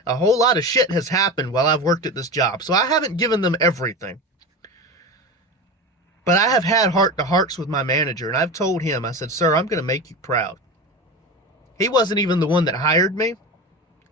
A whole lot of shit has happened while I've worked at this job. So I haven't given them everything. But I have had heart-to-hearts with my manager, and I've told him, I said, sir, I'm going to make you proud. He wasn't even the one that hired me,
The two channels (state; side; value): normal; both; correlation 0.26